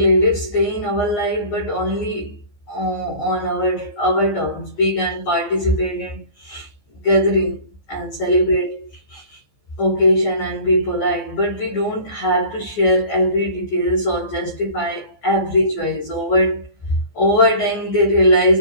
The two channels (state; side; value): late; right; 15 ms